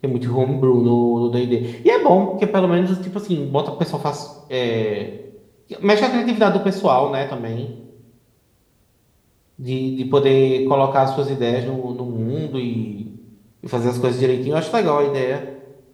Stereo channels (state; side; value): identical; both; correlation 1.00